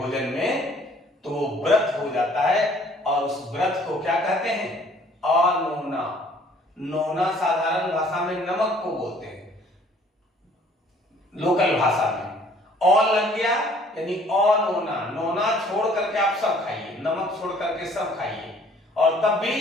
में तो वो व्रत हो जाता है और उस व्रत को क्या कहते हैं? अनोना। नोना साधारण भाषा में नमक को बोलते हैं, लोकल भाषा में और लग गया यानी अनोना। नोना छोड़ करके आप सब खाइए, नमक छोड़ करके सब खाइए और तब भी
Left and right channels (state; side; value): normal; both; correlation 0.57